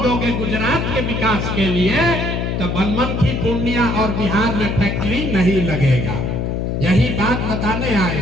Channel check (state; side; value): noise; left; hum, 1 dB below the sound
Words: दोगे गुजरात के विकास के लिए तो बनमनखी, पूर्णिया और बिहार में फैक्ट्री नहीं लगेगा। यही बात बताने आए